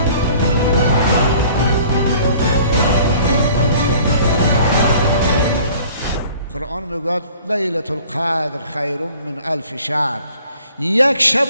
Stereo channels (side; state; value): both; inverted; correlation -0.52